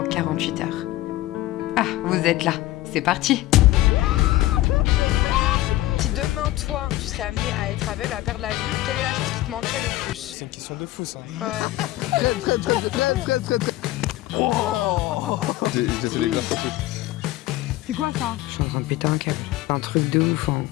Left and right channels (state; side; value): quieter; right; 16.5 dB